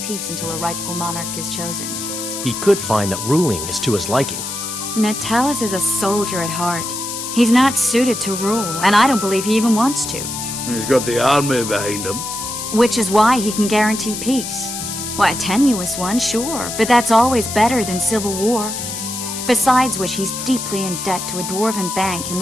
until a rightful monarch is chosen. He could find that ruling is to his liking. Natalis is a soldier at heart. He's not suited to rule, and I don't believe he even wants to. He's got the army behind him. Which is why he can guarantee peace. Why, a tenuous one, sure, but that's always better than civil war. Besides which, he's deeply in debt to a dwarven bank in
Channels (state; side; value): noise; left; hiss, 6 dB below the sound